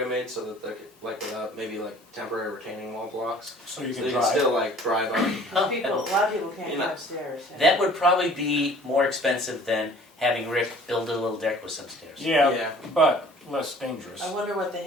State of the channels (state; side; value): normal; both; correlation 0.51